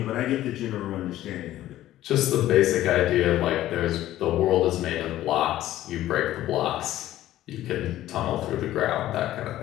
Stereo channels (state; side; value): quieter; right; 14.0 dB